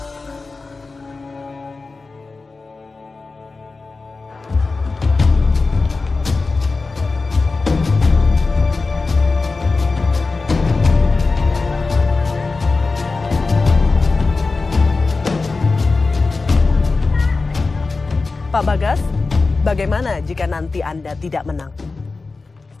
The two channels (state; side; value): quieter; right; 3.9 dB